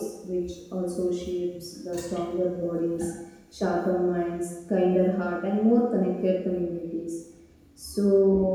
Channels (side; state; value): both; identical; correlation 1.00